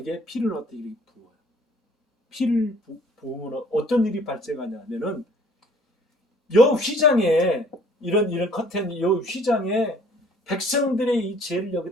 피를 어떻게 부어요. 피를 부으면 어떤 일이 발생하냐면은 요 휘장에 이런 커튼 요 휘장에 백성들의 이 죄를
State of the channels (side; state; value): both; normal; correlation 0.56